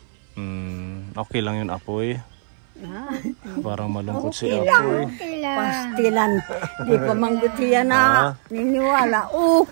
Okay lang yun, Apoy. Parang malungkot si Okay Apoy. Okay lang. Pastilan. Di pa manggutiya na. Niniwala.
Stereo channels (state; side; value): silent; left; 61 dB below the other